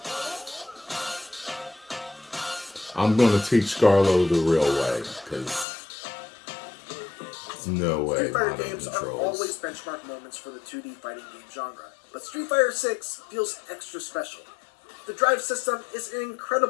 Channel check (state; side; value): drops out; right; at 5.7 s